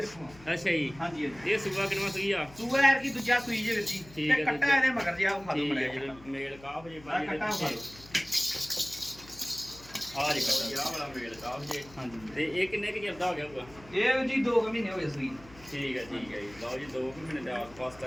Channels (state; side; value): noise; left; hum, 21 dB below the sound